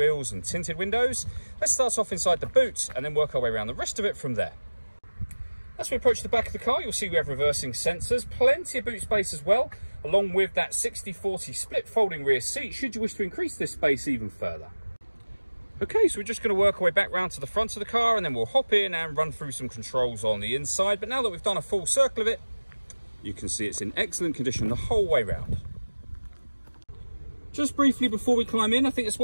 and tinted windows. Let's start off inside the boot and then work our way around the rest of it from there. As we approach the back of the car, you'll see we have reversing sensors, plenty of boot space as well, along with that 60/40 split folding rear seat, should you wish to increase this space even further. Okay, so we're just going to work our way back round to the front of the car, and then we'll hop in and run through some controls on the inside. But now that we've done a full circle of it, you can see it's in excellent condition the whole way round. Just briefly before we climb in, I think it's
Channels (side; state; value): both; inverted; correlation -1.00